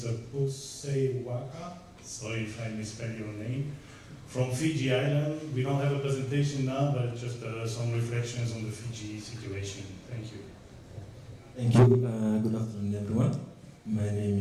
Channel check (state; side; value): identical; both; correlation 1.00